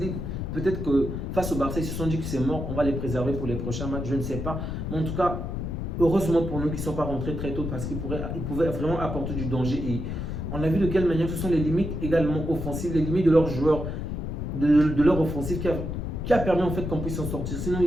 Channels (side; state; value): left; noise; rumble, 4 dB below the sound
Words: Peut-être que face au Barça, ils se sont dit que c'est mort. On va les préserver pour les prochains matchs. Je ne sais pas. Mais en tout cas, heureusement pour nous qu'ils ne sont pas rentrés très tôt parce qu'ils pouvaient vraiment apporter du danger. Et on a vu de quelle manière ce sont les limites également offensives, les limites de leurs joueurs, de leur offensive qui a permis en fait qu'on puisse s'en sortir. Sinon,